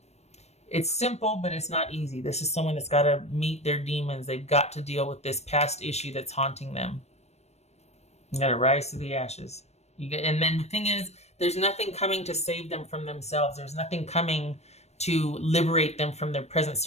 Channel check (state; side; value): late; right; 0.31 ms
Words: It's simple, but it's not easy. This is someone that's got to meet their demons. They've got to deal with this past issue that's haunting them. You got to rise to the ashes. And then the thing is, there's nothing coming to save them from themselves. There's nothing coming to liberate them from their present